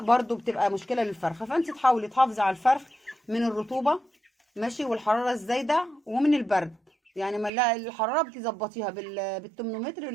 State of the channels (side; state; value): left; drops out; at 7.5 s